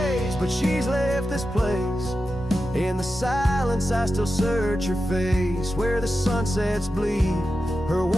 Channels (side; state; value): both; normal; correlation 0.91